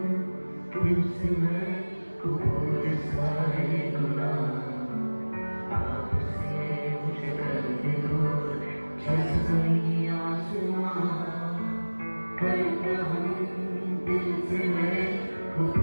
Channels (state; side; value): inverted; both; correlation -1.00